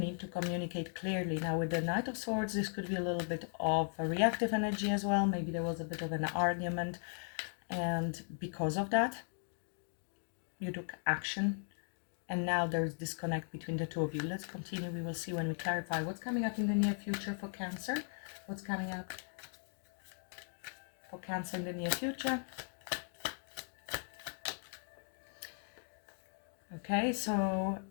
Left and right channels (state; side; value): silent; right; 53 dB below the other